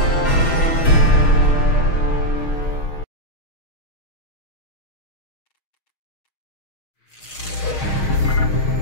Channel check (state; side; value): late; right; 6.4 ms